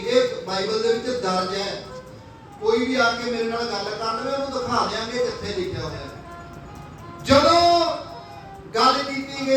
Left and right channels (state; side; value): identical; both; correlation 1.00